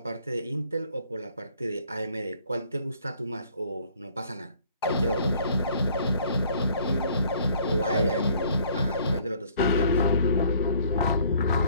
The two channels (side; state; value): both; inverted; correlation -0.59